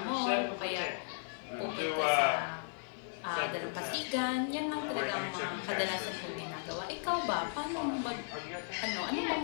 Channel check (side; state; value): right; silent; digital silence